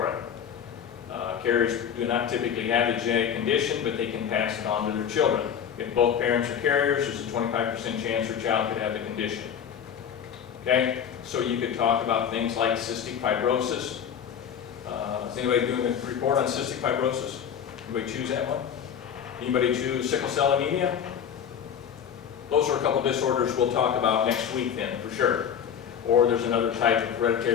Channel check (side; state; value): right; quieter; 8.3 dB